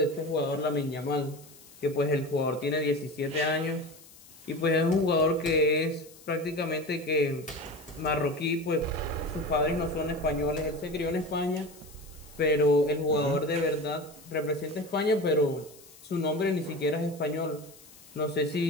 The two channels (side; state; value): left; noise; hiss, 22 dB below the sound